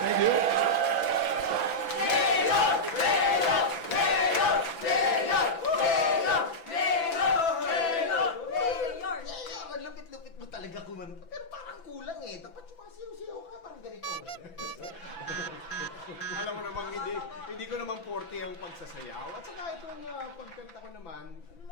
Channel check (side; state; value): right; late; 6.0 ms